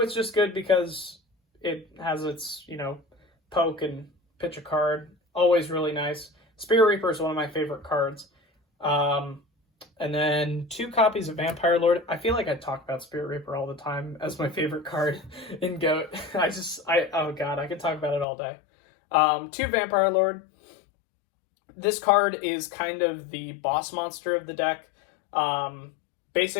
it's just good because it has its, poke and pitch a card. Always really nice. Spirit Reaper is one of my favorite cards. And then 2 copies of Vampire Lord. I feel like I talk about Spirit Reaper all the time as my favorite card in GOAT. Oh god, I could talk about it all day. 2 Vampire Lord. This card is kind of the boss monster of the deck.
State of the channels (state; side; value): drops out; right; at 18.2 s